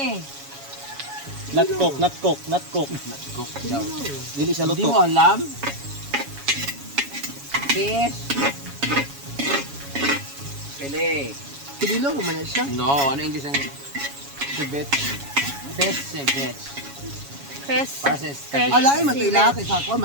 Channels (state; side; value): late; left; 7.2 ms